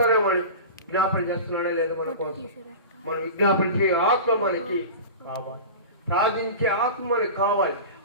అని విజ్ఞాపన చేస్తున్నాడే లేదు మన కోసం. మనం విజ్ఞాపన చేయ ఆత్మ మనకి కావాలి, ప్రార్థించే ఆత్మ మనకు కావాలి,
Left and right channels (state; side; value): inverted; both; correlation -0.32